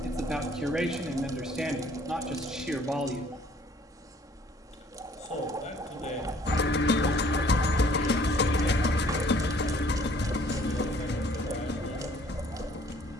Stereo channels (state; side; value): normal; both; correlation 0.57